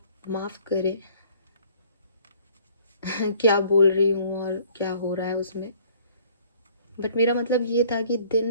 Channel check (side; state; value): both; inverted; correlation -0.57